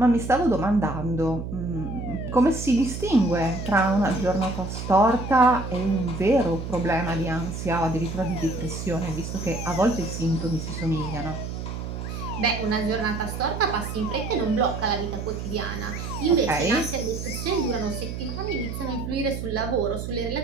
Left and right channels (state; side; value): noise; right; hum, 6 dB below the sound